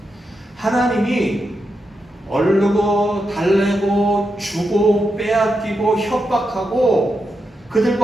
하나님이 얼르고 달래고 주고 빼앗기고 협박하고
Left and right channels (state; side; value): normal; both; correlation 0.86